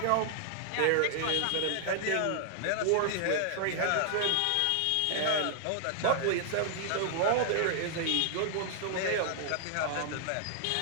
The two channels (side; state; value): both; different; correlation 0.00